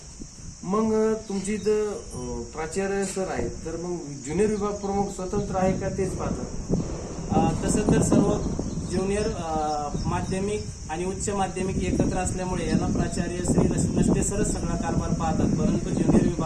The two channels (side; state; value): both; identical; correlation 1.00